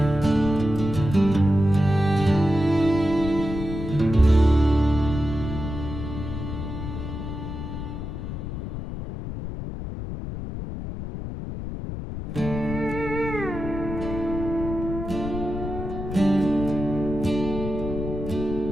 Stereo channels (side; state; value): left; noise; rumble, 7 dB below the sound